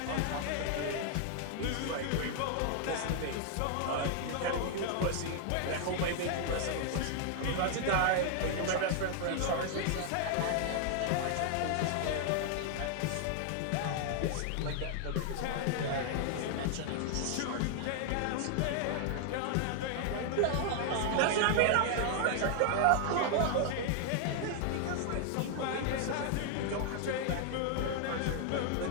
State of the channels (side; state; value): both; different; correlation 0.00